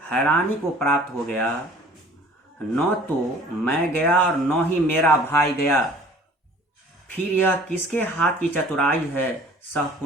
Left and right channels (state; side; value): normal; both; correlation 0.49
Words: हैरानी को प्राप्त हो गया। न तो मैं गया और न ही मेरा भाई गया, फिर यह किसके हाथ की चतुराई है। सह